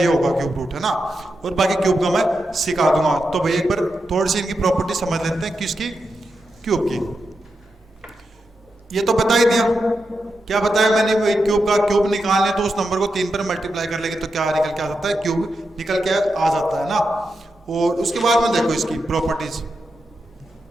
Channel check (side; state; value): both; normal; correlation 0.87